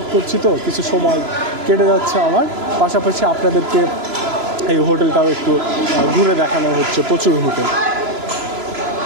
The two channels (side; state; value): left; late; 3.0 ms